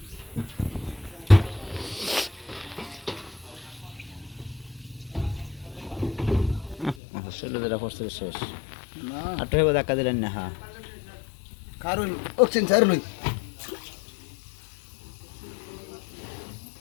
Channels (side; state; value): right; drops out; at 7.0 s